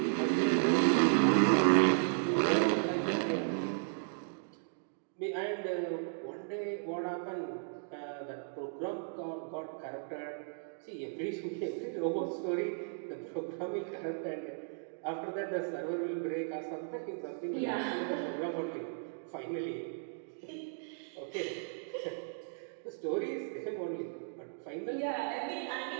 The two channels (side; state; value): left; silent; digital silence